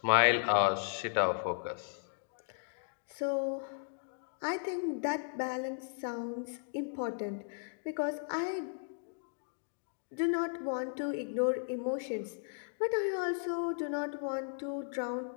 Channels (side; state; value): right; silent; digital silence